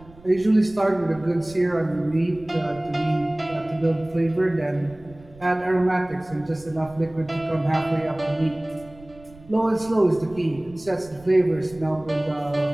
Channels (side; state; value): right; noise; rumble, 22 dB below the sound